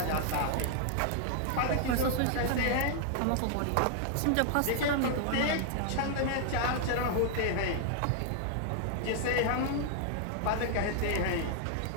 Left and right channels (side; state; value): both; different; correlation 0.00